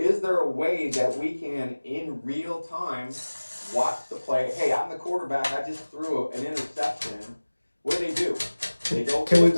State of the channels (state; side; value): inverted; both; correlation -1.00